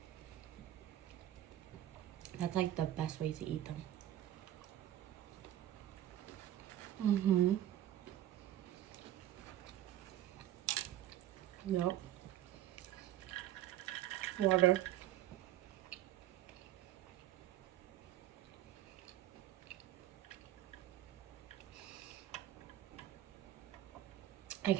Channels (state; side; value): quieter; left; 13.0 dB